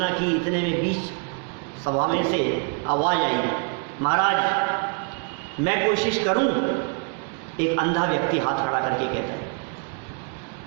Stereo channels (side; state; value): left; quieter; 36.7 dB